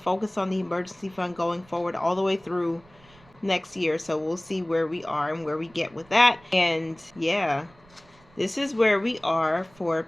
focus on the emergency fund going forward all the way through next year. So we'll see where we are and where we get with that. And yeah, this is where we are for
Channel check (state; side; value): noise; right; rumble, 28 dB below the sound